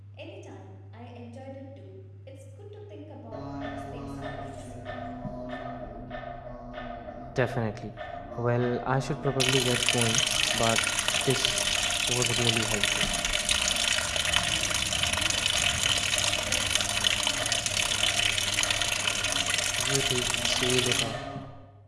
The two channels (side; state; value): both; identical; correlation 1.00